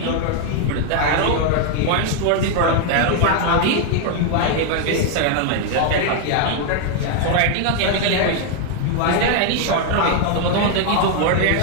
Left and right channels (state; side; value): different; both; correlation 0.01